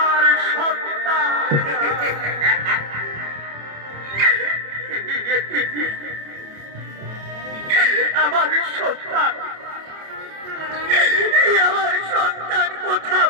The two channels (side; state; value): left; late; 27 ms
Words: সন্তান আমার সন্তান আমার সন্তান কথা